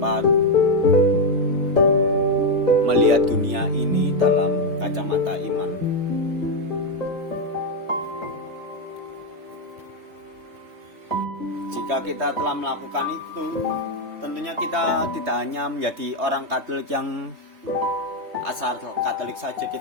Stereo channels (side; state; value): left; late; 3.4 ms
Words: melihat dunia ini dalam kacamata iman. Jika kita telah melakukan itu, tentunya kita tidak hanya menjadi orang Katolik yang asal Katolik saja,